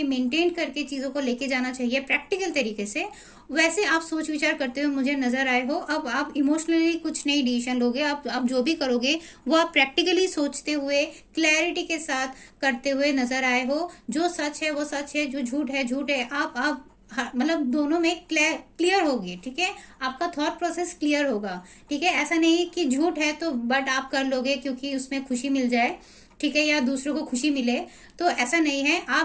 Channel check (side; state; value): both; identical; correlation 1.00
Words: मेंटेन करके चीजों को लेके जाना चाहिए प्रैक्टिकल तरीके से, वैसे आप सोच विचार करते हुए मुझे नजर आए हो। अब आप इमोशनली कुछ नई डिसीजन लोगे, आप जो भी करोगे वो आप प्रैक्टिकली सोचते हुए क्लैरिटी के साथ करते हुए नजर आए हो। जो सच है वो सच है, जो झूठ है झूठ है। आप मतलब दोनों में क्लियर होगी, ठीक है। आपका थॉट प्रोसेस क्लियर होगा, ठीक है। ऐसा नहीं कि झूठ है तो बट आप कर लोगे क्योंकि उसमें खुशी मिल जाए, ठीक है, या दूसरों को खुशी मिले, तो ऐसा नहीं है।